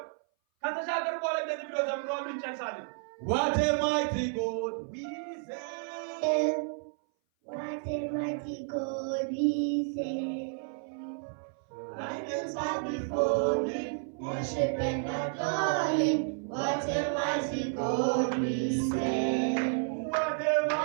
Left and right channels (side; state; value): left; silent; 57 dB below the other